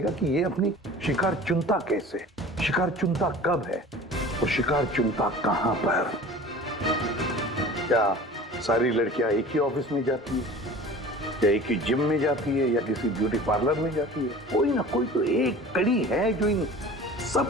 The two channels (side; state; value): both; normal; correlation 0.41